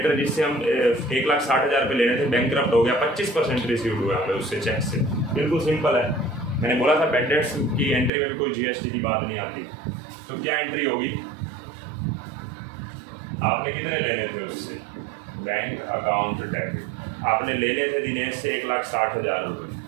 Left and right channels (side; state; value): left; drops out; at 8.1 s